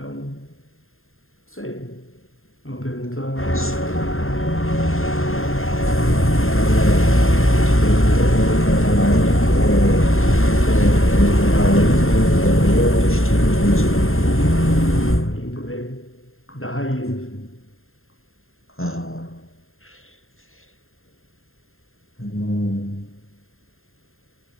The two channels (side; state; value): right; late; 0.61 ms